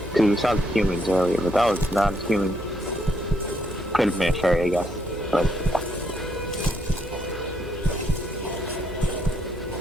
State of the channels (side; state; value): both; normal; correlation 0.74